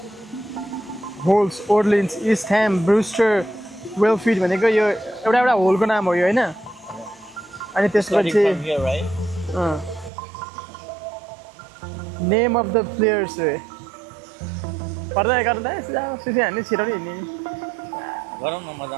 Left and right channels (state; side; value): drops out; left; at 10.1 s